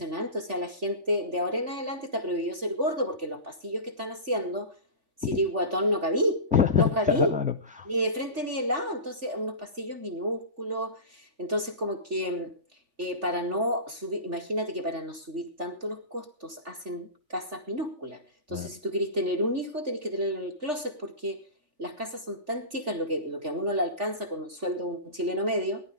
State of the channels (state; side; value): late; left; 3.3 ms